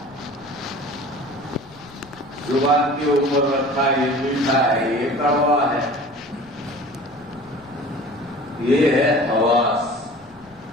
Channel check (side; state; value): left; noise; rumble, 27 dB below the sound